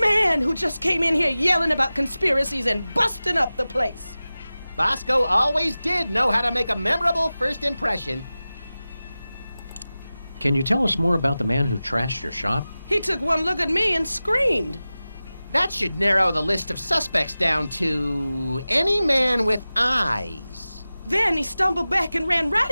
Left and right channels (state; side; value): inverted; both; correlation -0.96